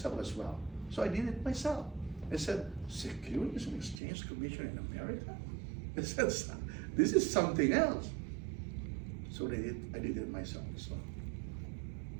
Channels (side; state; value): left; drops out; at 4.0 s